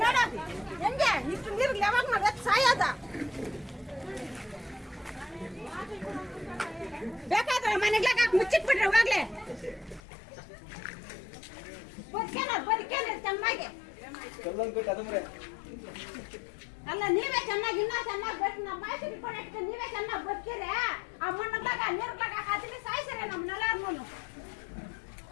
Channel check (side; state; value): right; drops out; at 10.0 s